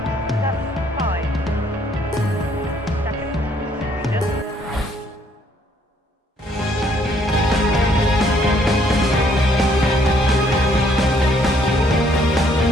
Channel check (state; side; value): normal; both; correlation 0.66